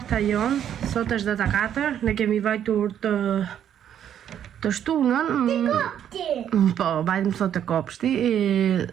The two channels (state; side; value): quieter; left; 9.8 dB